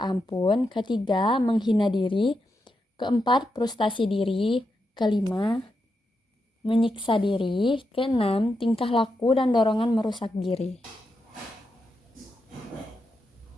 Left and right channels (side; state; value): both; normal; correlation 0.85